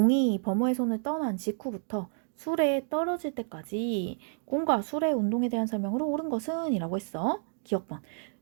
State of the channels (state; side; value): silent; left; digital silence